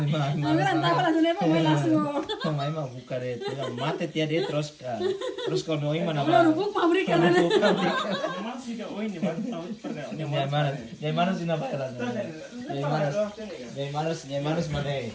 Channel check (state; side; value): identical; both; correlation 1.00